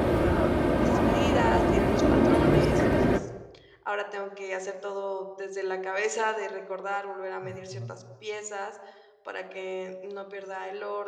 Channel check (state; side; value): identical; both; correlation 1.00